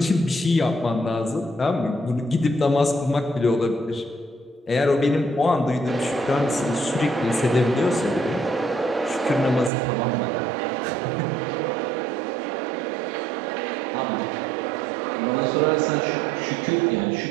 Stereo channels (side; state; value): left; drops out; at 9.7 s